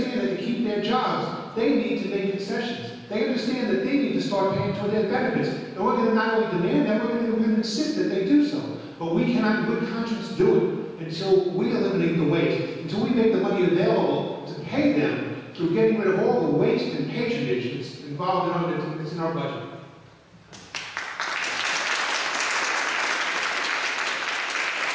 that to keep their jobs, they need to make concessions. They understand that they need to start paying toward their benefits. And we're going to not only demand that, we're going to insist that they do so. But we cannot, in good conscience, do it until we eliminate the waste, until we make the money available to pay them through getting rid of all the waste and patronage that's involved in our budget.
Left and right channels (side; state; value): both; identical; correlation 1.00